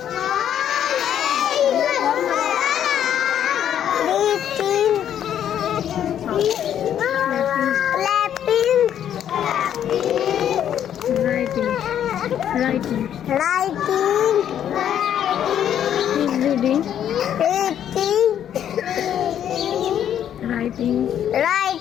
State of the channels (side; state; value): right; quieter; 9.9 dB